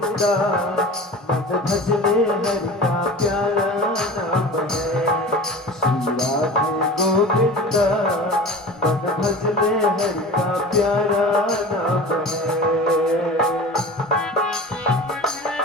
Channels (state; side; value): normal; both; correlation 0.36